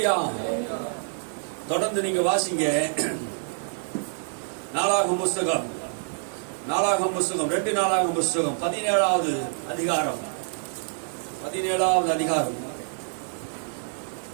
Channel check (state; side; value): silent; left; digital silence